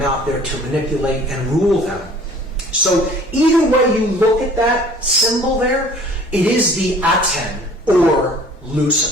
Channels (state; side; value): normal; both; correlation 0.50